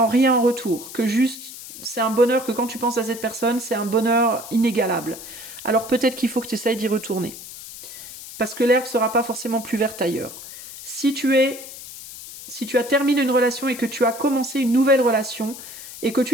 rien en retour, que juste c'est un bonheur que quand tu penses à cette personne, c'est un bonheur inégalable, alors peut-être qu'il faut que tu essayes d'y retourner. Parce que l'herbe ne sera pas forcément plus verte ailleurs. Si tu as terminé une relation et que tu as commencé une nouvelle relation et que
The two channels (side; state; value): left; noise; hiss, 13 dB below the sound